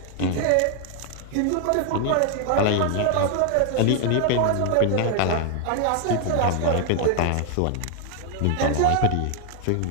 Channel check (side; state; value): both; different; correlation 0.00